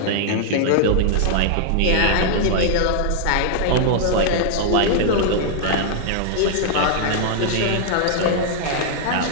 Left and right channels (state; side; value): different; both; correlation -0.01